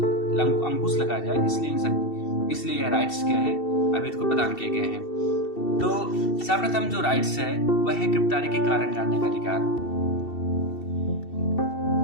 अंकुश लगाया जाए। इसलिए यह राइट्स क्या है अभियुक्त को प्रदान किए गए हैं। तो सर्वप्रथम जो राइट्स है वह है गिरफ्तारी के कारण जानने का अधिकार।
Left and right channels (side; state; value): right; late; 2.7 ms